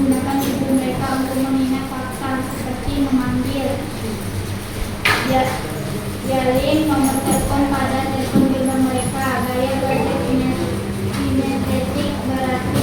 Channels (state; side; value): identical; both; correlation 1.00